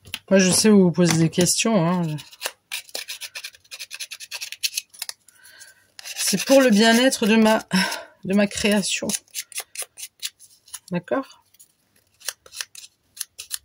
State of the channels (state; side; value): identical; both; correlation 1.00